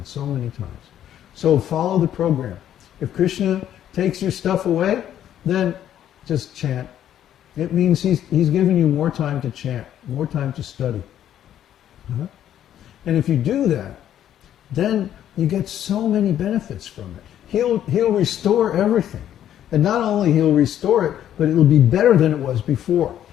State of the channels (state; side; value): quieter; right; 10.9 dB